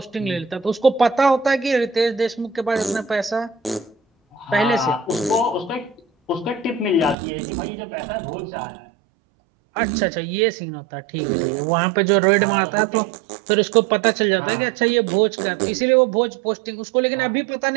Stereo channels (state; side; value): drops out; left; at 7.2 s